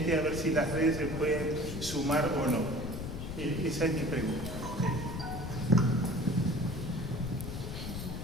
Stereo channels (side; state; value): left; noise; rumble, 6 dB below the sound